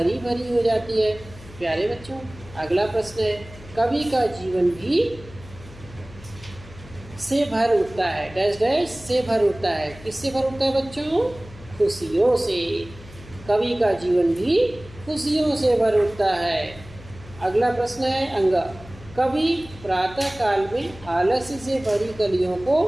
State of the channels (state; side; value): noise; left; hum, 18 dB below the sound